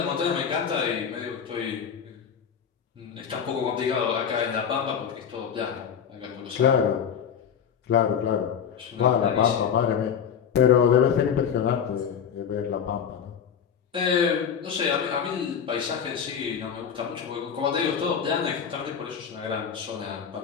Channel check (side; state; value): right; quieter; 7.7 dB